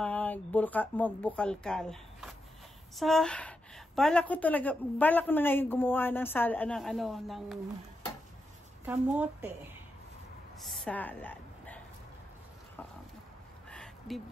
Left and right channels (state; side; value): normal; both; correlation 0.86